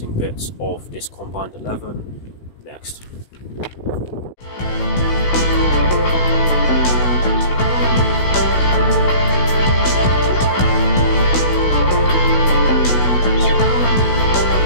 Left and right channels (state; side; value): late; right; 16 ms